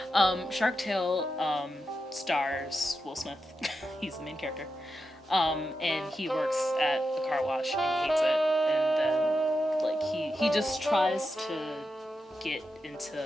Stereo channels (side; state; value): both; normal; correlation 0.88